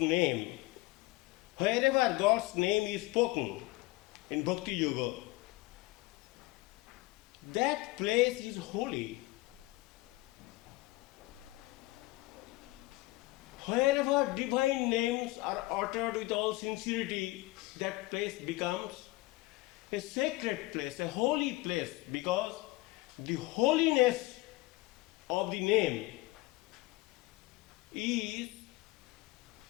is spoken in Bhakti Yoga, that place is holy. Wherever divine names are uttered with all sincerity, that place becomes a sacred place, a holy place, because the holiness of the name is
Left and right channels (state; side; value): quieter; right; 20.8 dB